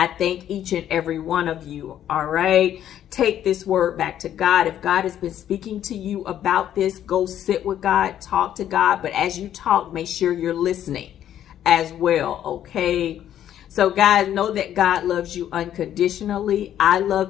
thank each and every one of you. All right. Take this word back to God. If God has been speaking to you about this, go sit with God, talk to God. But as you talk, make sure you're listening as well. Okay. So guys, know that God loves you unconditionally. I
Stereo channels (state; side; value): quieter; right; 10.9 dB